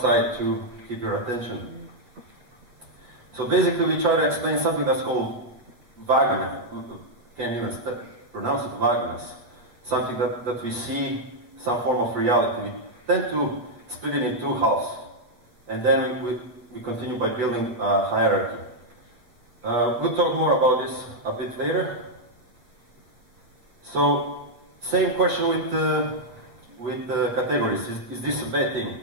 to keep your attention. So basically we try to explain something that's called vagueness. Can't even pronounce it, vagueness. Something that we see, some form of reality. We tend to split it in two halves. And then we continue by building a hierarchy. We'll talk more about this a bit later. So, same question with categories. Is this a bad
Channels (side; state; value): left; late; 8.3 ms